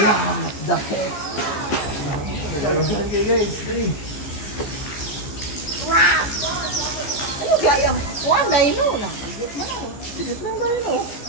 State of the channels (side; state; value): right; late; 15 ms